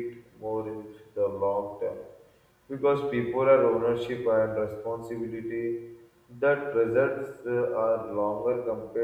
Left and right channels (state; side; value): identical; both; correlation 1.00